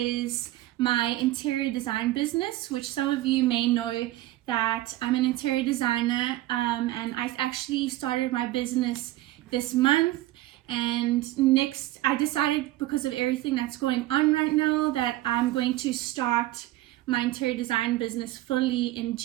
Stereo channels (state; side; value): quieter; left; 16.3 dB